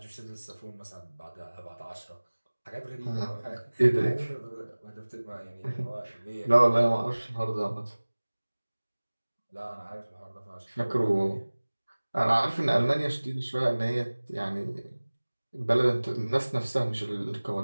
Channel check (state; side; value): inverted; both; correlation -1.00